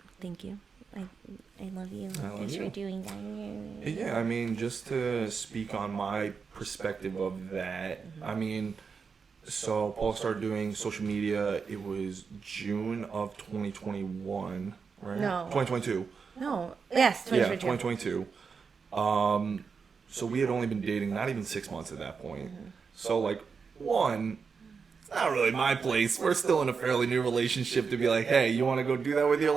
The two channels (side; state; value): left; quieter; 5.5 dB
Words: thank you. I love you. I love Thanks you. for doing that. Yeah, I mean, just to speak on my perspective of that, I mean, so Paul started doing social media, it was June of 2021, right? No. 2022. No. Yes. Yeah, 2022. 2022. So we had only been dating not even 6 months at that point. So, like, one, it's not really my place. We're still in a fairly new relationship to be like, hey, you want to go do that with your